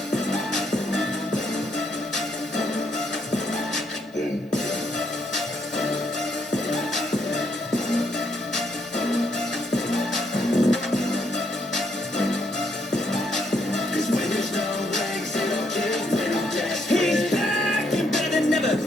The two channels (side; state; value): both; normal; correlation 0.74